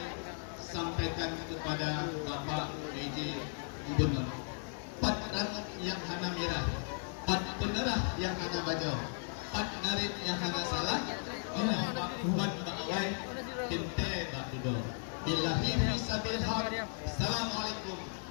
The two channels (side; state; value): right; silent; 54 dB below the other